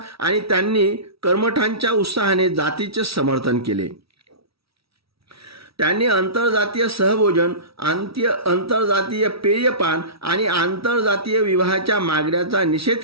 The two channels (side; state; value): left; late; 0.76 ms